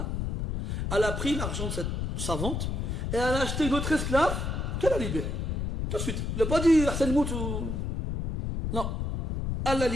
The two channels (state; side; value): noise; left; rumble, 2 dB below the sound